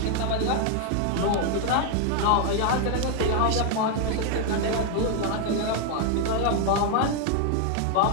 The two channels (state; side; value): different; both; correlation 0.00